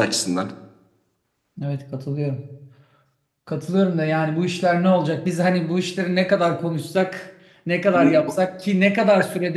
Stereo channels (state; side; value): identical; both; correlation 1.00